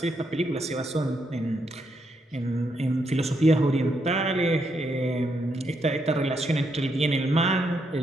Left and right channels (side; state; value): both; normal; correlation 0.78